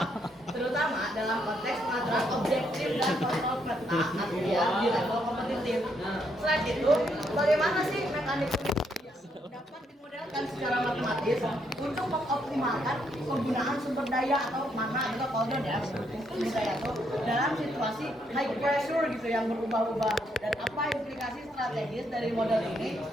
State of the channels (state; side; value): normal; both; correlation 0.75